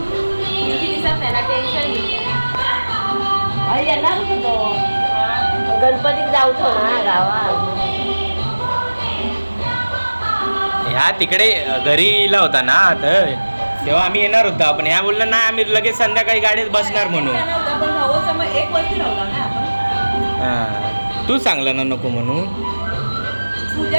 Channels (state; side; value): inverted; both; correlation -1.00